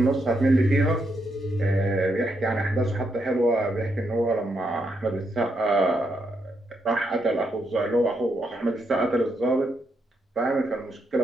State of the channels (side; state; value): both; normal; correlation 0.80